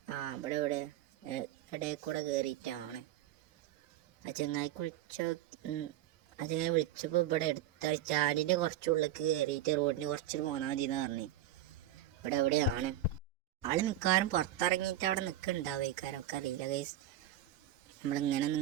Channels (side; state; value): left; quieter; 11.7 dB